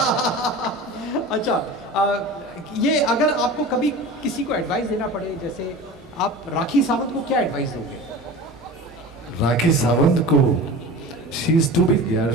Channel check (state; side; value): normal; both; correlation 0.34